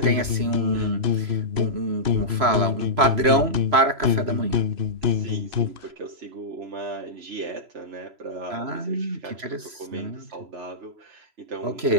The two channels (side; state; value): left; late; 3.0 ms